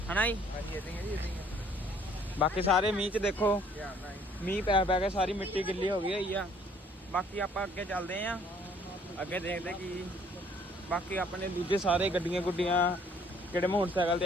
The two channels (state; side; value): normal; both; correlation 0.59